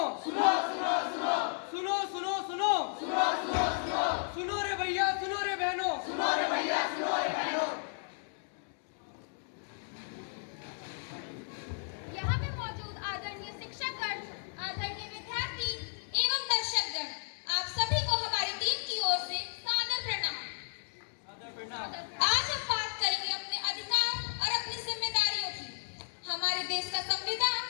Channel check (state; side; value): silent; right; 55 dB below the other